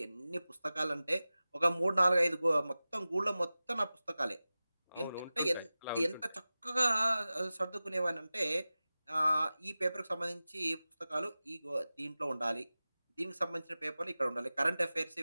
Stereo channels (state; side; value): inverted; both; correlation -0.96